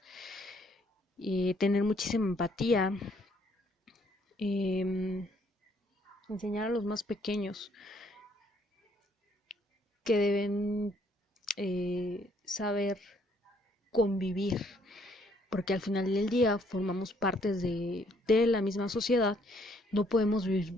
tener muchísima empatía, eh, enseñar a los más pequeños que deben saber convivir, porque al final del día formamos partes de la misma sociedad, no podemos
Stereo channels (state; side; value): normal; both; correlation 0.67